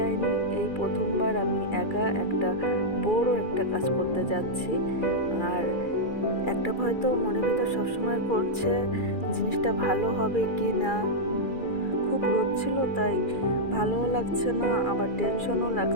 এই প্রথমবার আমি একা একটা বড় একটা কাজ করতে যাচ্ছি। আর একটা ভয় তো মনের ভিতর সবসময় করছে, জিনিসটা ভালো হবে কি না। খুব রোদ ছিল, তাই ভালোও লাগছে না, আবার টেনশনও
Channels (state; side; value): late; right; 2.4 ms